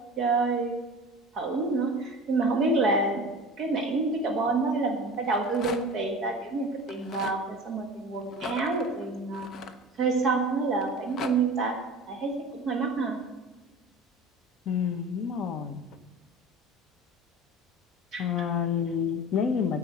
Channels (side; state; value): both; normal; correlation 0.36